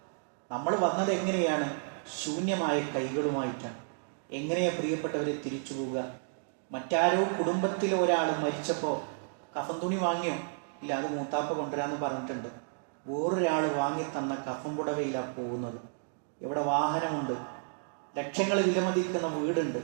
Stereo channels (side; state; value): left; silent; digital silence